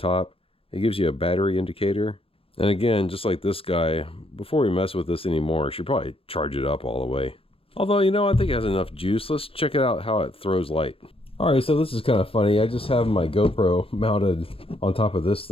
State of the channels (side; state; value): right; late; 0.27 ms